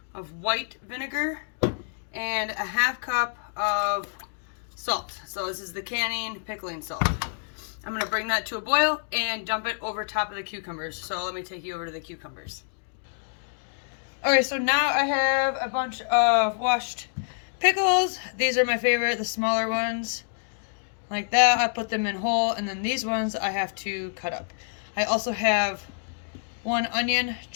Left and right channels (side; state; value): right; silent; digital silence